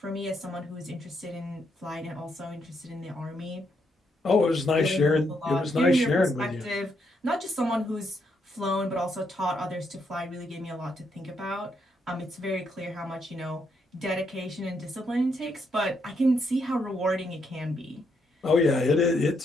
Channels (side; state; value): both; normal; correlation 0.77